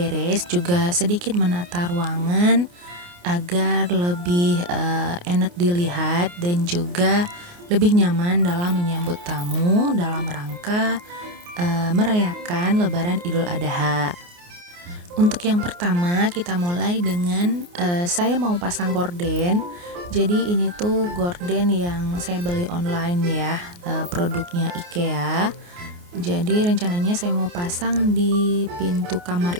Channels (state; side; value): late; left; 29 ms